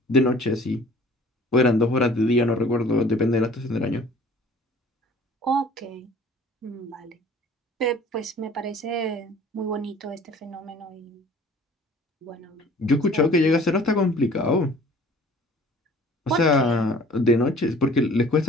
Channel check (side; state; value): both; normal; correlation 0.50